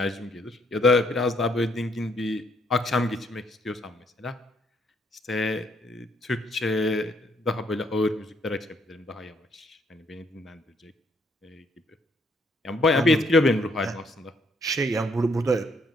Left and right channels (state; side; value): normal; both; correlation 0.69